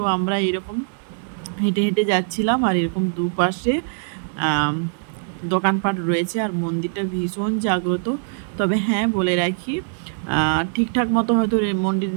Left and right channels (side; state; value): left; silent; digital silence